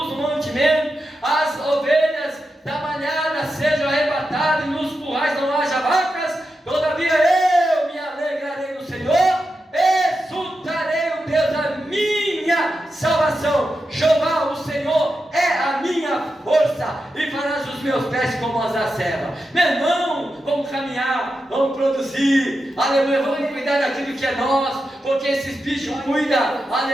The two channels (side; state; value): both; normal; correlation 0.89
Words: mantimento, as ovelhas da manhada sejam arrebatadas e nos currais não haja vacas, todavia eu me alegrarei no Senhor, exultarei o Deus da minha salvação. Jeová, o Senhor, é a minha força, e farás os meus pés como as da serva. Meu irmão, vamos caminhar, vamos produzir, aleluia, vamos cuidar daquilo que é nosso, porque esses bichos cuidam,